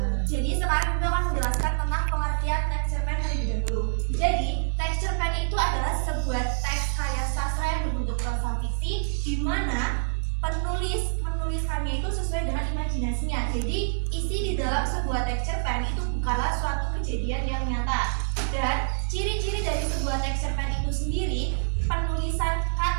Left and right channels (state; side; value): silent; left; 59 dB below the other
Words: Jadi sekarang kita akan menjelaskan tentang pengertian teks cerpen terlebih dahulu. Jadi teks cerpen itu adalah sebuah teks karya sastra yang berbentuk prosa fiksi, di mana penulis menuliskannya itu sesuai dengan imajinasinya. Jadi isi di dalam sebuah teks cerpen itu bukanlah suatu kejadian yang nyata. Dan ciri-ciri dari sebuah teks cerpen itu sendiri, penulisan